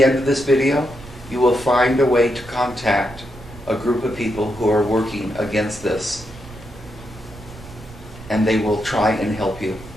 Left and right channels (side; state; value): right; noise; rumble, 18 dB below the sound